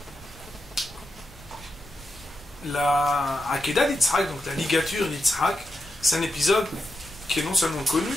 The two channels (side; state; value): both; normal; correlation 0.87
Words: la Akedah d'Yitzhak, donc la ligature d'Yitzhak, c'est un épisode qui est non seulement connu,